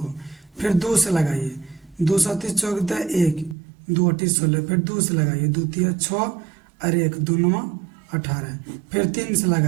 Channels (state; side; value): drops out; left; at 3.6 s